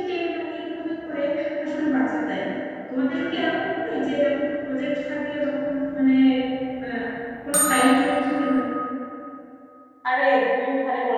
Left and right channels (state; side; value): identical; both; correlation 1.00